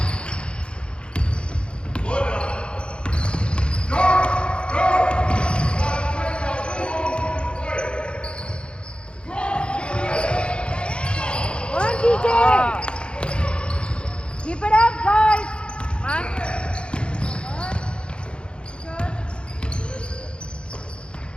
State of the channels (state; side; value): late; right; 0.056 ms